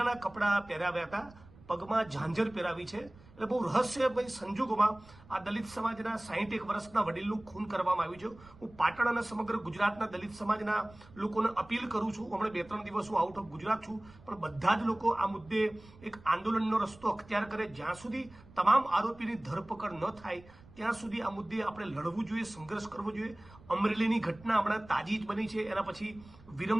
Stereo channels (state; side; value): noise; right; rumble, 22 dB below the sound